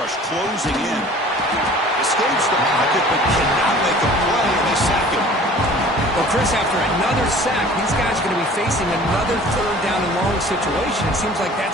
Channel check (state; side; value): normal; both; correlation 0.47